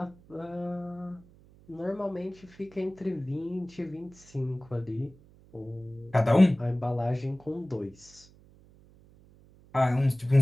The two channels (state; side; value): noise; right; hum, 25 dB below the sound